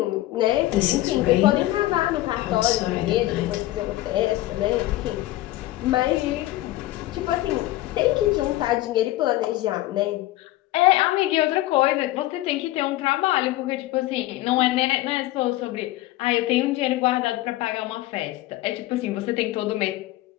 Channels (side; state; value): right; quieter; 16.7 dB